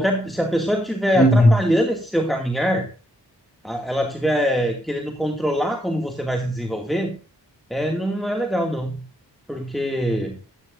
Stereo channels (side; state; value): both; normal; correlation 0.78